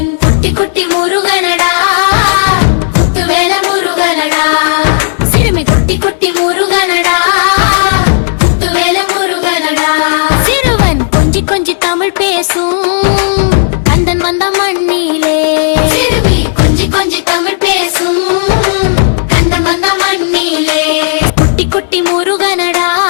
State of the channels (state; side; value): silent; right; digital silence